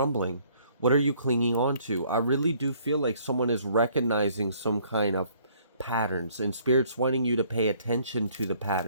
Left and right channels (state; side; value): inverted; both; correlation -0.62